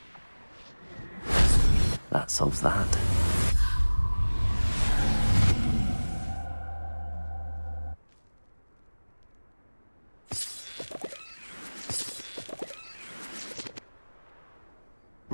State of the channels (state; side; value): inverted; both; correlation -1.00